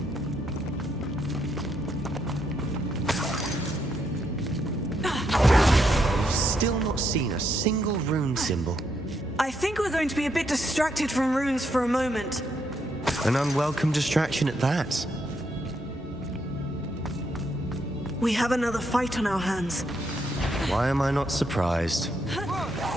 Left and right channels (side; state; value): both; normal; correlation 0.77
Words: Still not seen a single rune symbol. I think we're going to be a bit distracted from runes for a moment. An unwelcome distraction at that. We have another fight on our hands. Why am I not surprised?